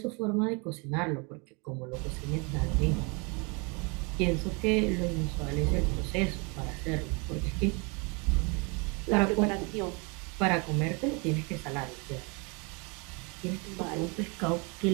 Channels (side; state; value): left; quieter; 31.6 dB